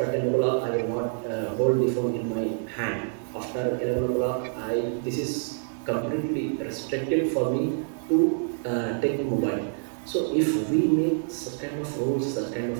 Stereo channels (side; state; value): left; silent; digital silence